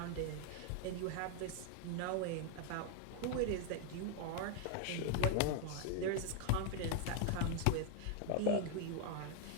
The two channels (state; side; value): different; both; correlation 0.01